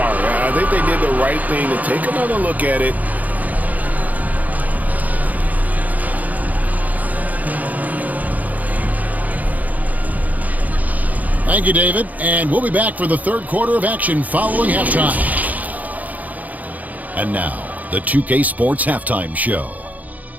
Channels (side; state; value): left; late; 0.078 ms